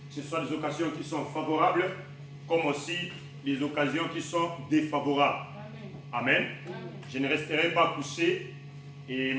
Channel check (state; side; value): identical; both; correlation 1.00